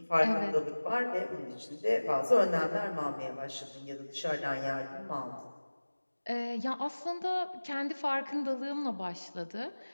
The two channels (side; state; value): both; inverted; correlation -1.00